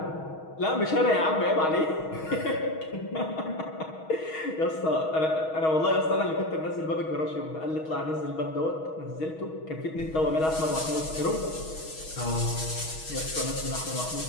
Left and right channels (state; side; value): late; right; 6.3 ms